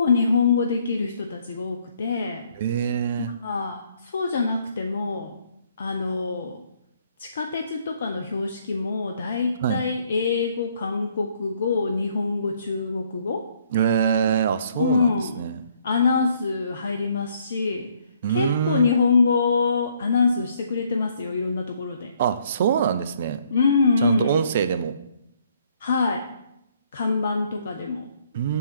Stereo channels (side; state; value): both; inverted; correlation -0.66